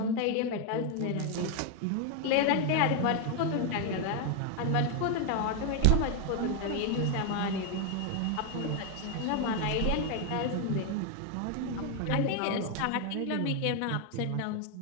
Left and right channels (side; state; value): both; different; correlation 0.01